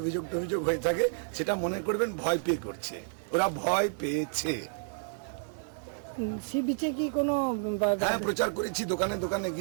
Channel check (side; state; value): left; silent; digital silence